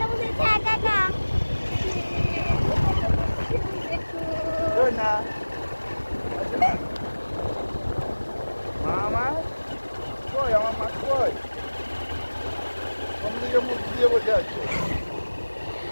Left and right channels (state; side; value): inverted; both; correlation -1.00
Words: বসেছে একা একা। না মামা কই আমার মা কই কোনদিকে মুখ দিয়ে বসে আছে